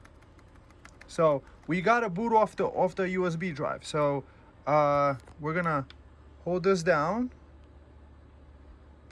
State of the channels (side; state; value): both; identical; correlation 1.00